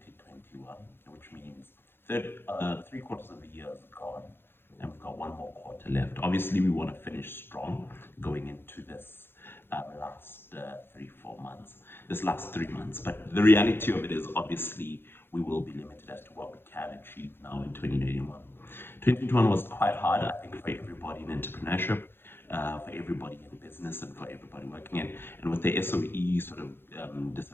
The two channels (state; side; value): late; right; 0.10 ms